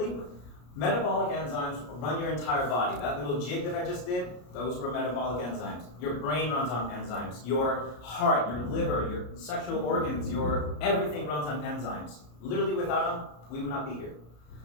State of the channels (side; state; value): right; late; 33 ms